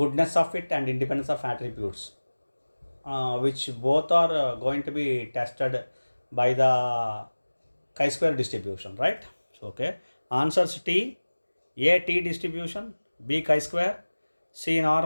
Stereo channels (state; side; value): inverted; both; correlation -1.00